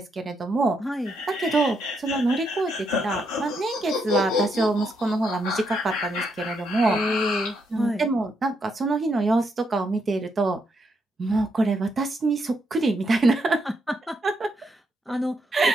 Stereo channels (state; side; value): normal; both; correlation 0.78